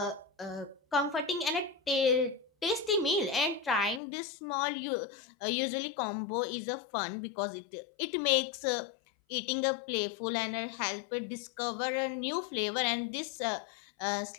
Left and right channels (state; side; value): drops out; right; at 4.0 s